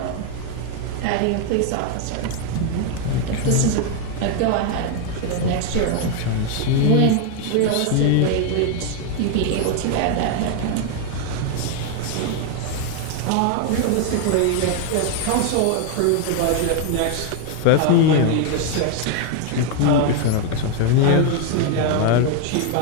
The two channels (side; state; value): both; different; correlation 0.01